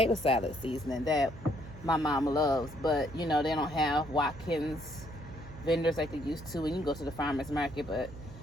salad seasoning that my mom loves, but you know they don't have Watkins vendors like they used to, and you can go to the farmer's market. But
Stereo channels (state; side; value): noise; right; hum, 15 dB below the sound